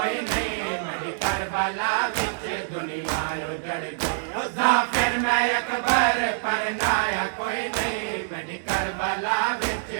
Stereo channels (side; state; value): left; silent; digital silence